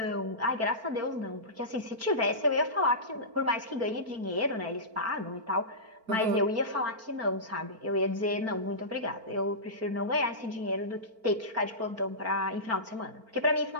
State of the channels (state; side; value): late; left; 4.4 ms